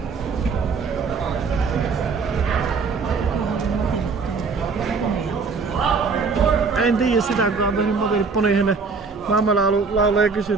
En tiedä sitä, kuka on tehnyt Matille ponihänen. Mamma laulaa ja kysyy,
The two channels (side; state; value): left; quieter; 4.7 dB